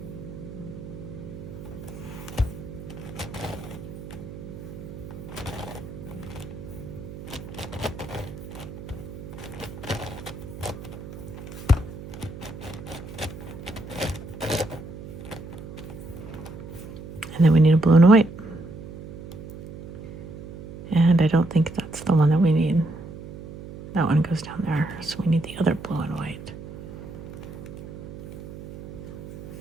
And then we need a blue and a white. And I don't think that's the one that we need. That one goes down there. So we need the other blue and white.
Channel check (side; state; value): right; noise; hum, 12 dB below the sound